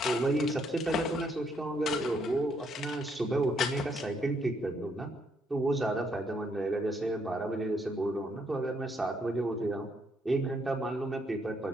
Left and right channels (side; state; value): both; normal; correlation 0.72